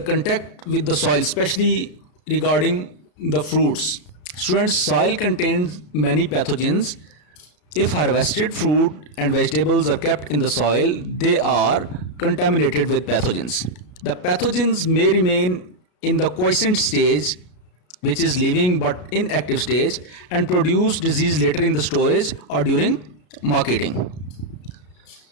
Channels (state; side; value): late; right; 33 ms